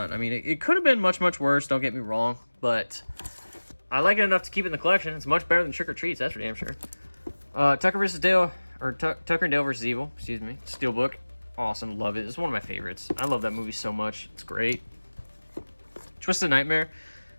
I mean, it could have been much, much worse, don't get me wrong, but I like it enough to keep it in the collection. It's much better than Trick or Treats, that's for damn sure. Tucker vs. Dale, or Tucker and Dale vs. Evil, excuse me. Steelbook, awesome, love it. It's one of my favorites. I love that movie so much. It's great. Twisted Nightmare.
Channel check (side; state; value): both; inverted; correlation -1.00